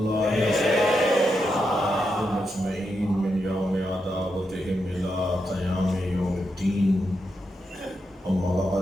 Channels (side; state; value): both; normal; correlation 0.85